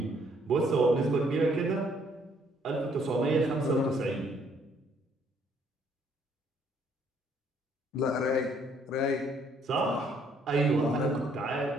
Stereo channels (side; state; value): both; normal; correlation 0.66